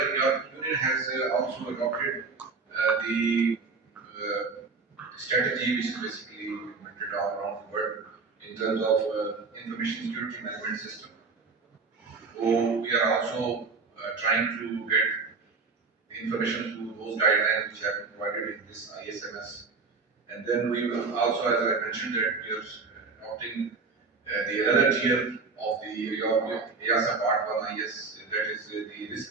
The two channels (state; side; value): quieter; left; 4.4 dB